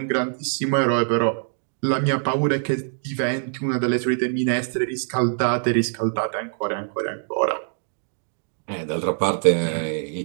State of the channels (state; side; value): silent; left; 63 dB below the other